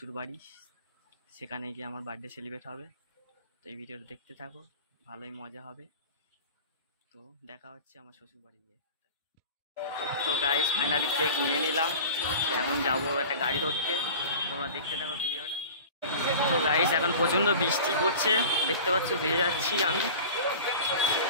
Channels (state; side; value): inverted; both; correlation -0.38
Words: বাড়ি, সেখানে গিয়ে আমার বার্থডে সেলিব্রেট হবে। তো এই ভিডিওটা দেখতে থাকো, ভালোই মজা হবে। তো দেখা হচ্ছে আমার শ্বশুর বাড়ি গিয়ে। তো গাইস ফাইনালি কেক নিয়ে নিলাম, এখন যাবো একটা গাড়ি ধরতে। তোমরা দেখতে থাকো ভিডিওটা। তো গাইস এখন প্রচণ্ড বৃষ্টি পড়ছে, দেখতে পাচ্ছ ভিজে যাচ্ছি আমি।